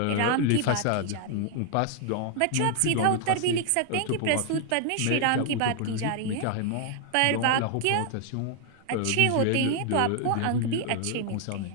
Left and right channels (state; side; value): different; both; correlation 0.00